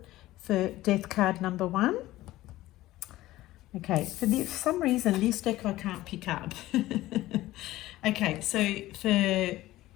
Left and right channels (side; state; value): right; quieter; 16.4 dB